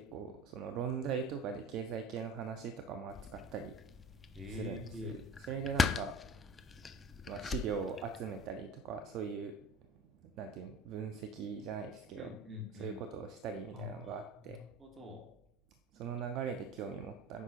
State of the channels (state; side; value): normal; both; correlation 0.40